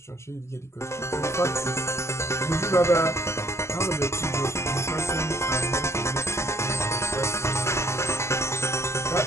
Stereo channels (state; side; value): late; right; 0.13 ms